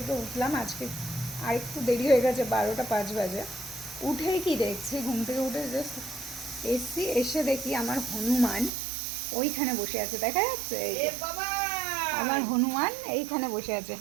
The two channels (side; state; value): left; drops out; at 8.7 s